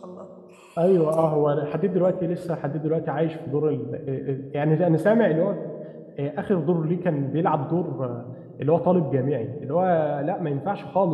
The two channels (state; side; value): identical; both; correlation 1.00